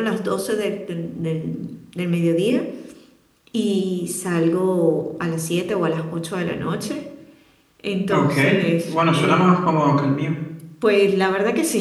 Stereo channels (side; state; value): both; identical; correlation 1.00